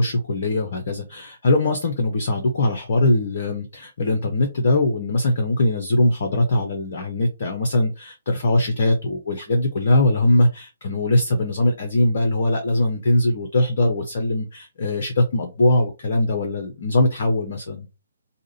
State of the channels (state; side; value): inverted; both; correlation -0.80